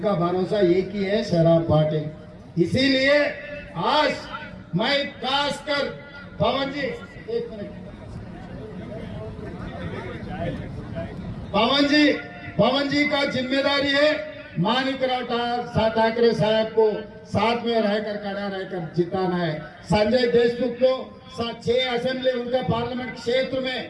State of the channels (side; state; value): both; identical; correlation 1.00